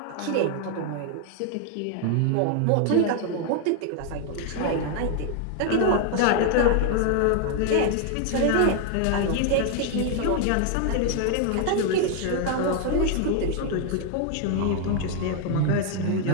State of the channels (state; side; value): different; both; correlation 0.00